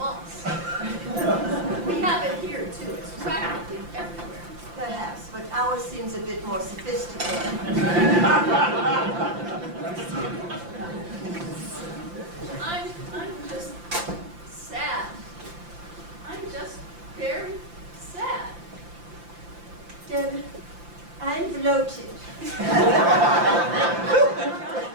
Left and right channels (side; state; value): left; late; 5.8 ms